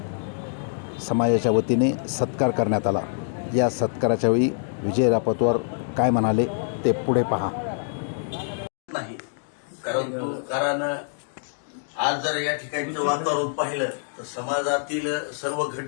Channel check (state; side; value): silent; right; digital silence